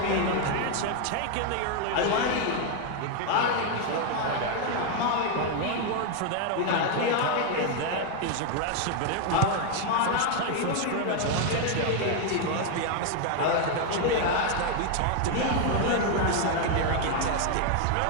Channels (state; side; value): different; both; correlation 0.01